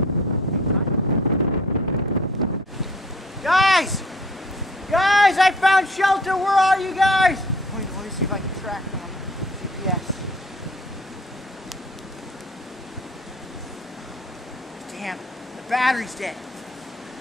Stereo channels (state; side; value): normal; both; correlation 0.53